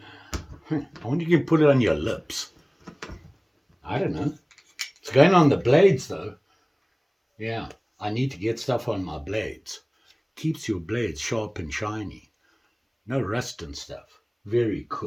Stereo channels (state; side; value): identical; both; correlation 1.00